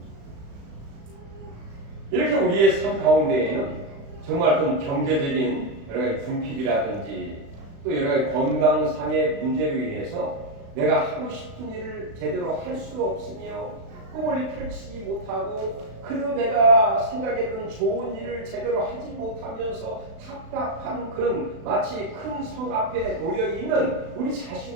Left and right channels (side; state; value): left; late; 36 ms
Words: 이렇게 우리의 삶 가운데에는 정말 어떤 경제적인 여러 가지 궁핍이라든지 또 여러 가지 건강상의 문제로 인해서 내가 하고 싶은 일을 제대로 할 수 없으며 꿈을 펼치지 못하고 그래도 내가 생각했던 좋은 일을 제대로 하지 못하면서 답답한 그런 마치 큰 성 앞에 놓여있는 우리